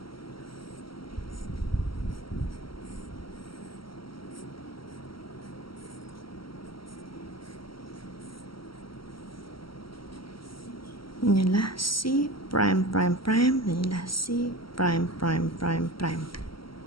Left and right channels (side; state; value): right; late; 0.74 ms